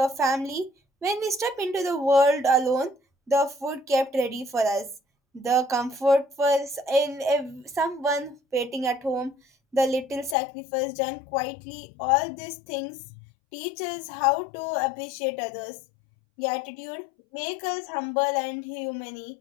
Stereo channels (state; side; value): drops out; right; at 10.4 s